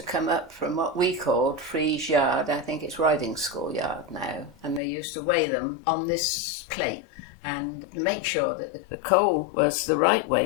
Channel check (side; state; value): right; drops out; at 4.8 s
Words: come up from what we called Freeze Yard. I think it's Riding School Yard now, and they used to weigh them on this plate and make sure that the coal was the right